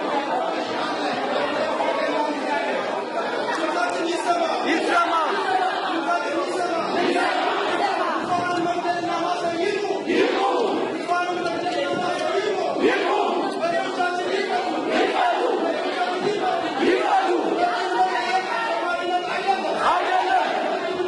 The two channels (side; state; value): both; identical; correlation 1.00